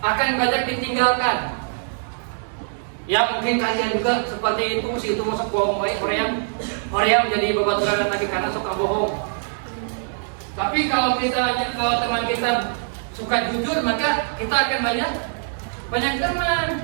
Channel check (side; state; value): left; silent; digital silence